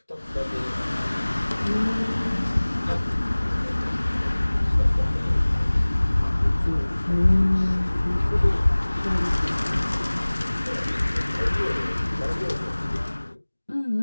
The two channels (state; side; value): inverted; both; correlation -1.00